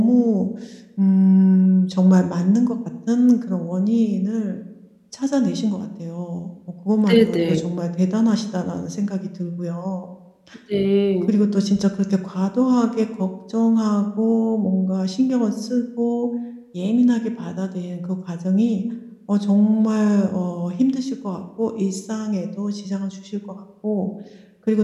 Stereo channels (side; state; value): both; identical; correlation 1.00